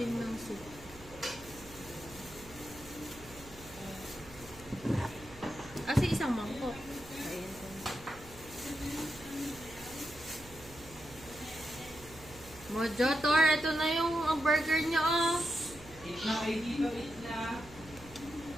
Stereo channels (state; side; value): noise; right; hum, 19 dB below the sound